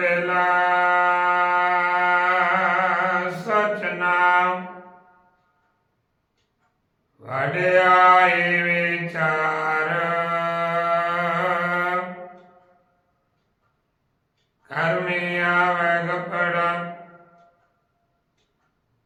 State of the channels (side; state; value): both; identical; correlation 1.00